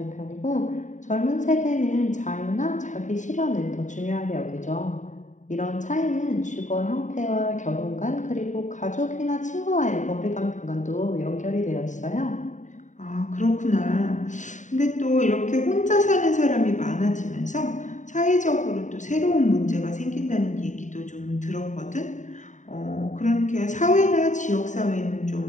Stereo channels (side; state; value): right; late; 0.36 ms